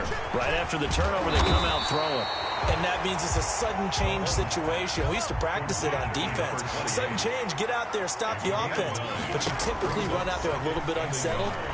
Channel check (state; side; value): identical; both; correlation 1.00